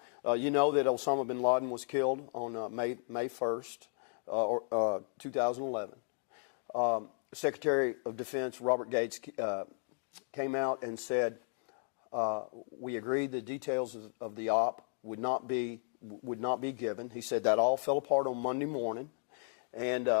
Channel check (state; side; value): silent; right; 55 dB below the other